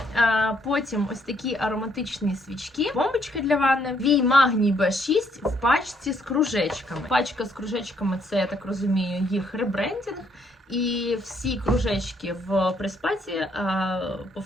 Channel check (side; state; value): both; normal; correlation 0.70